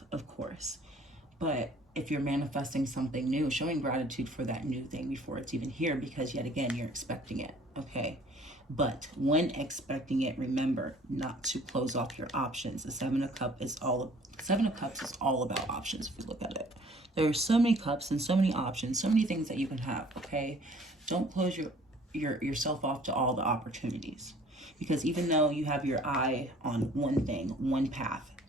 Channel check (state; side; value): normal; both; correlation 0.54